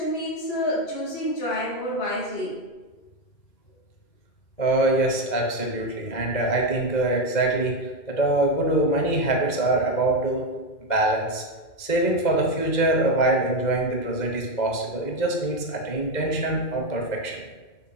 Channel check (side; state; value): right; late; 2.0 ms